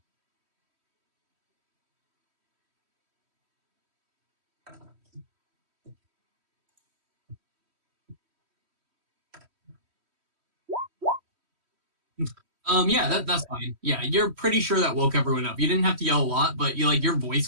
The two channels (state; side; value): late; left; 3.1 ms